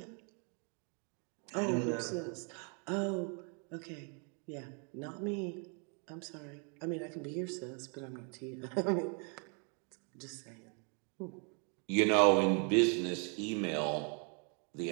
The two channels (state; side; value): quieter; left; 37.8 dB